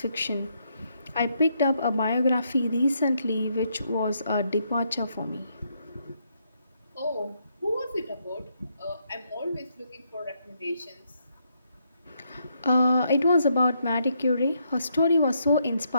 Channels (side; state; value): both; inverted; correlation -0.76